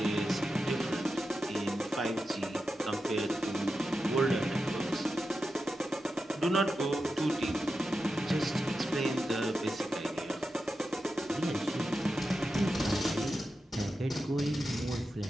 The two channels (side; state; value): both; normal; correlation 0.90